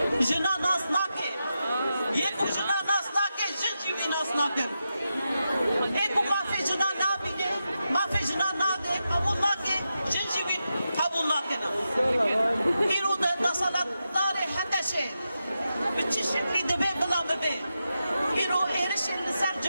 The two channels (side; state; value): both; inverted; correlation -0.89